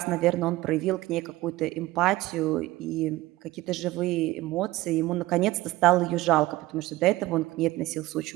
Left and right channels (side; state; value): left; quieter; 18.1 dB